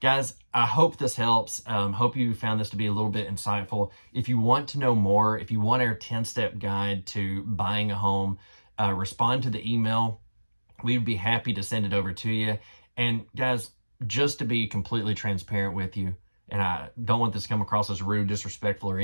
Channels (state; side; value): inverted; both; correlation -1.00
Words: guys, I hope this helps. Hope you found this to be a little bit insightful. If you want to know more, if you want our 10-step guide to buying a home, respond to the email. We'd be happy to send it over to you. And guys, just to be completely transparent with you, and I don't want this to come across as rude, disrespectful, or